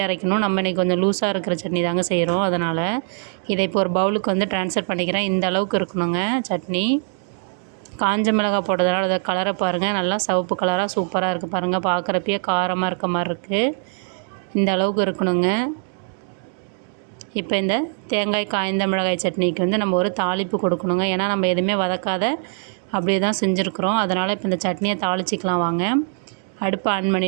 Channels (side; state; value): left; silent; 55 dB below the other